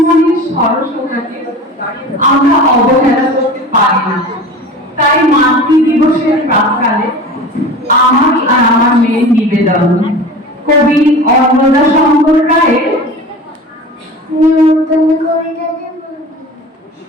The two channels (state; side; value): normal; both; correlation 0.36